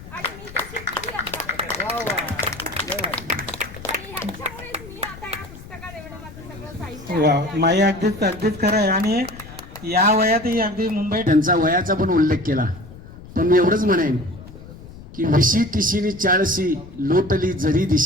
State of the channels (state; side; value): noise; left; rumble, 16 dB below the sound